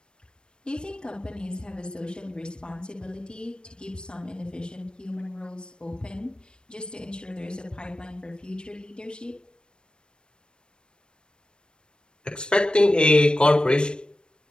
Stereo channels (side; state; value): right; late; 0.052 ms